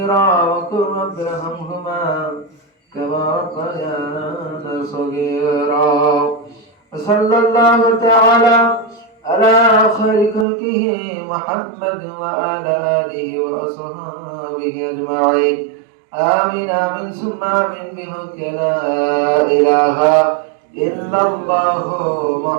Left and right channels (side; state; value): left; drops out; at 10.5 s